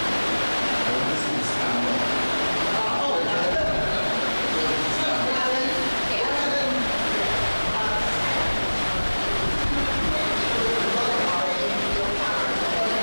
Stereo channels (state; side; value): inverted; both; correlation -1.00